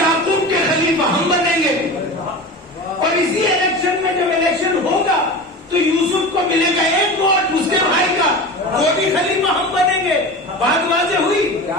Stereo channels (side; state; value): both; normal; correlation 0.30